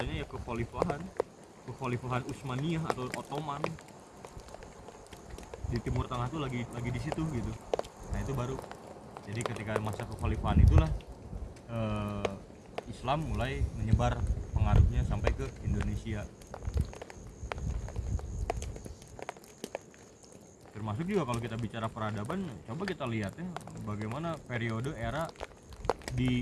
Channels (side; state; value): both; identical; correlation 1.00